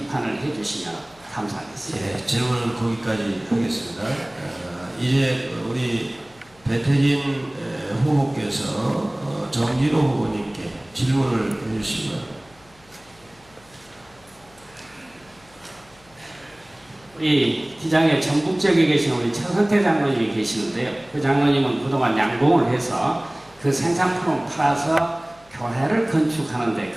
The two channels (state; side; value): noise; left; hum, 28 dB below the sound